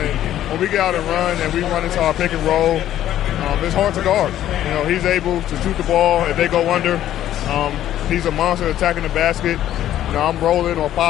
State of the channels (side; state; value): right; quieter; 12.2 dB